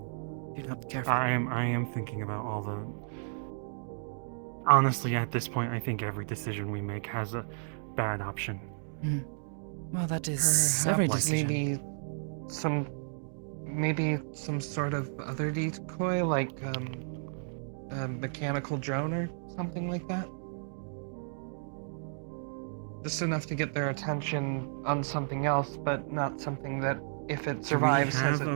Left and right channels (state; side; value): silent; left; digital silence